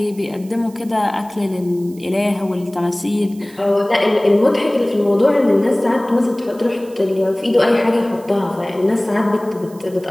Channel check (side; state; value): right; noise; hiss, 25 dB below the sound